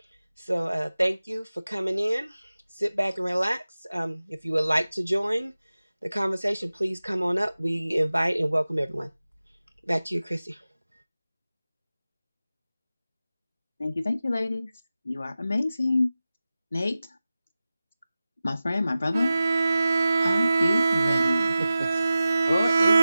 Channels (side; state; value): both; inverted; correlation -0.95